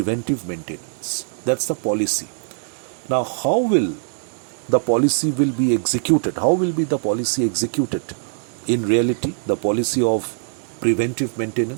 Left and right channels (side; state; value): left; silent; digital silence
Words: maintenance. That's the policy. Now, how will the policy be executed? How will be the policy executed? In reality, the policy of preventive